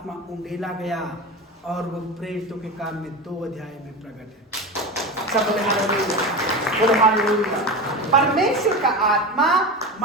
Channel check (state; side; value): normal; both; correlation 0.25